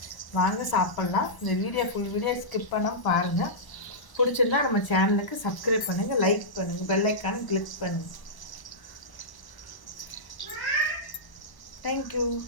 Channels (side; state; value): right; late; 1.0 ms